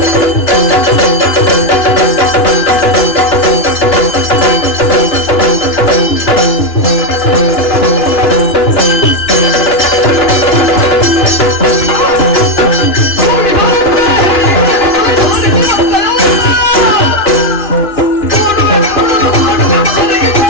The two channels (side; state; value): right; late; 2.9 ms